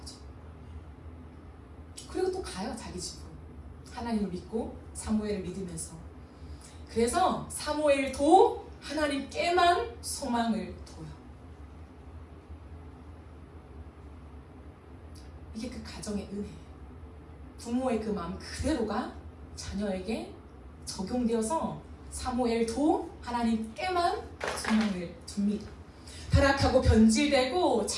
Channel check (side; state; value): both; identical; correlation 1.00